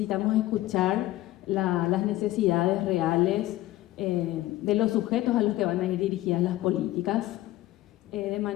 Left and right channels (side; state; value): right; quieter; 16.0 dB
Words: escuchar las necesidades reales de los sujetos a los que van a ir dirigidas las políticas de